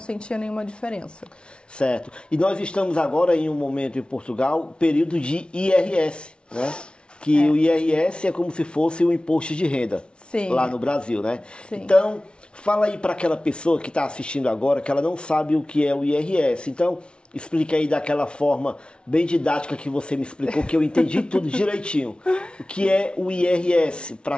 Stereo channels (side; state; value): right; late; 0.057 ms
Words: nenhuma diferença. Certo. E nós estamos agora em um momento em Portugal, período de IRS, né? Que o IRS é como se fosse o imposto de renda. Sim. Lá no Brasil, né? Sim. Então, fala aí para aquela pessoa que está assistindo agora, que ela não sabe o que é o IRS. Então, explique aí daquela forma bem didática que você me explicou, que eu entendi tudo direitinho. O que é o IRS para